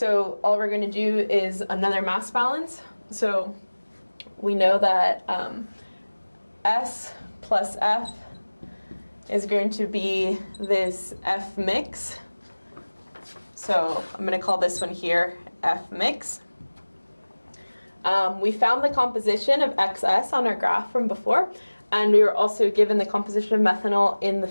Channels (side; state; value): both; inverted; correlation -1.00